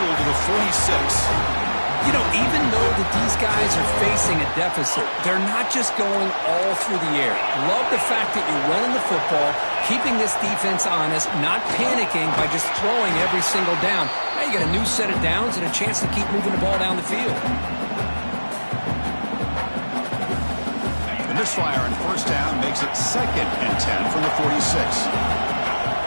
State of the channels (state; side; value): inverted; both; correlation -1.00